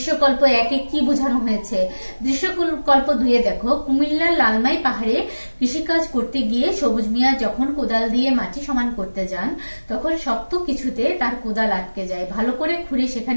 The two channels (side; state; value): both; inverted; correlation -1.00